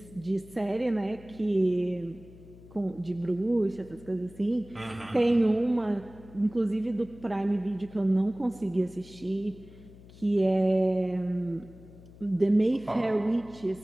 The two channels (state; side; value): noise; left; hum, 20 dB below the sound